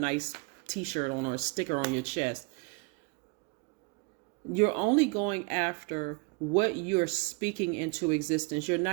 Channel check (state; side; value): quieter; left; 30.7 dB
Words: t-shirt on or a sticker on your chest. You're only going after what you're speaking into existence. You're